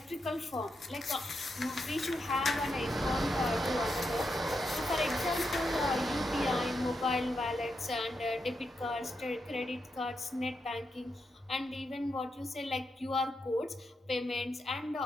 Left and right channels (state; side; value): normal; both; correlation 0.84